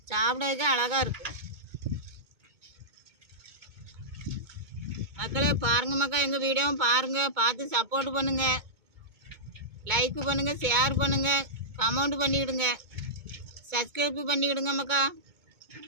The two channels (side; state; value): left; late; 2.2 ms